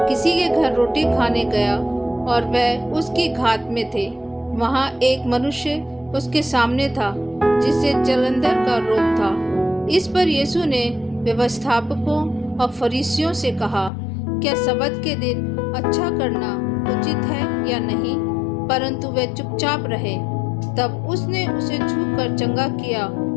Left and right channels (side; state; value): right; drops out; at 13.9 s